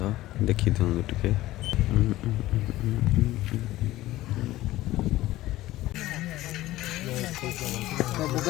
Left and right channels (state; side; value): quieter; right; 16.3 dB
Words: देखी दिखाँ टे